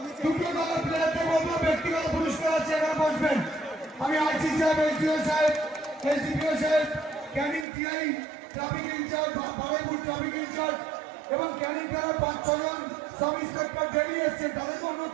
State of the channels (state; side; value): drops out; left; at 7.7 s